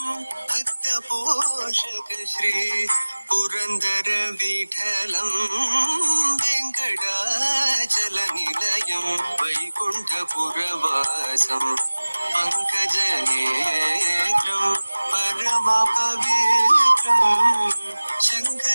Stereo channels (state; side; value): inverted; both; correlation -1.00